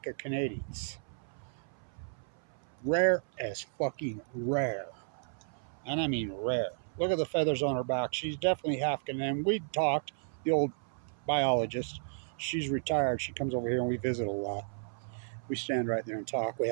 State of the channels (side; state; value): left; silent; 56 dB below the other